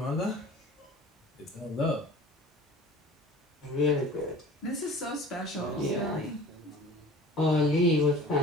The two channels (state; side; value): normal; both; correlation 0.43